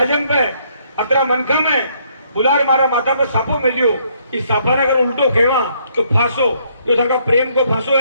पे अतरा मनखा में बुलार मारा माथा पे सापो मिलियो। इस सापा ने अगर उल्टो खेवा तो फांसो, जो था प्रेम को फांसो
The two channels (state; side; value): inverted; both; correlation -0.68